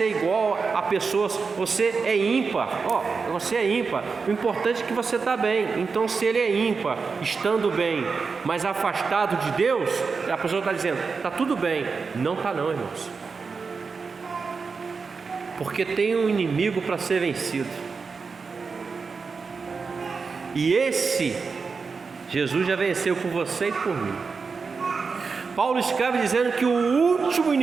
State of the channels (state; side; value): quieter; left; 4.9 dB